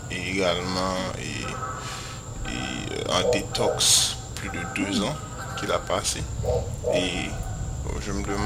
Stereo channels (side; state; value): both; identical; correlation 1.00